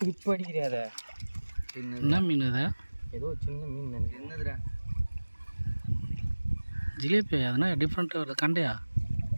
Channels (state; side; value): inverted; both; correlation -1.00